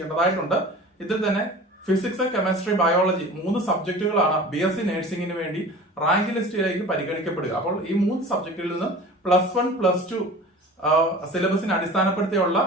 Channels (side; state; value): both; normal; correlation 0.39